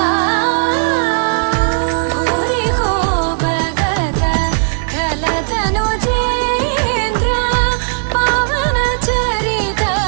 भूरि को भगत खलतनु चेन्द्र पवन चरित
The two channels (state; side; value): silent; left; 69 dB below the other